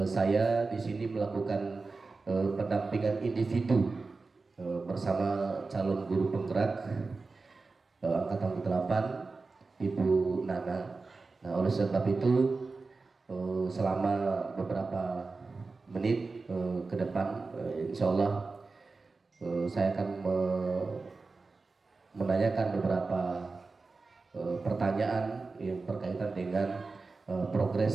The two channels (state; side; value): quieter; left; 3.9 dB